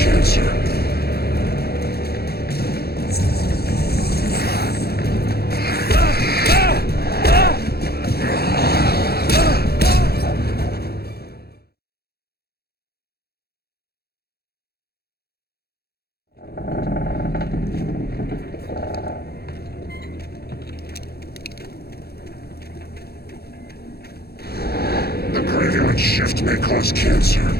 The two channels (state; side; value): late; right; 0.46 ms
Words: The graveyard shift may cause cancer.